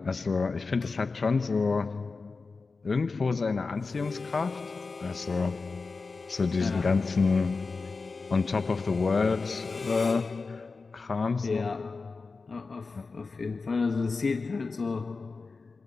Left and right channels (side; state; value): right; quieter; 4.2 dB